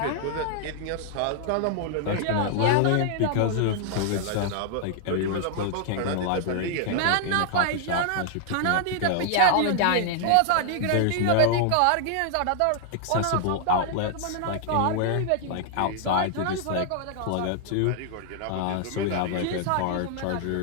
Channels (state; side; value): different; both; correlation 0.00